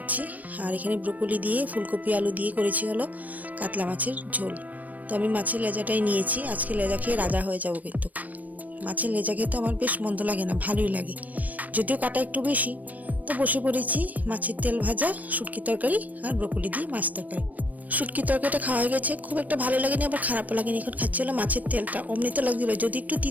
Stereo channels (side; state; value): left; late; 0.076 ms